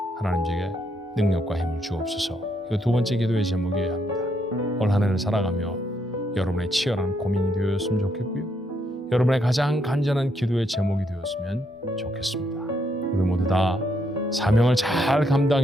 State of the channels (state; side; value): normal; both; correlation 0.76